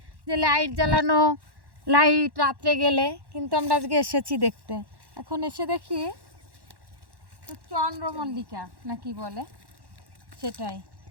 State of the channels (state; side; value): late; left; 1.1 ms